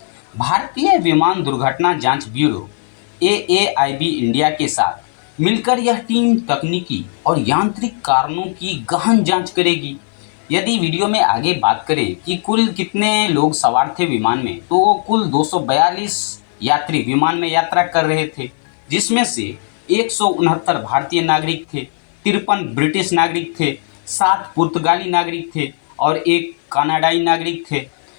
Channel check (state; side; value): silent; right; 56 dB below the other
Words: भारतीय विमान दुर्घटना जांच ब्यूरो AAIB इंडिया के साथ मिलकर यह टीम तकनीकी और यांत्रिक कारणों की गहन जांच करेगी। यदि वीडियो में आगे बात करें कि कुल कितने लोग सवार थे विमान में, तो कुल 242 यात्री विमान में यात्रा कर रहे थे, जिसमें से 169 भारतीय नागरिक थे, 53 ब्रिटिश नागरिक थे, 7 पुर्तगाली नागरिक थे और 1 कनाडाई नागरिक थे।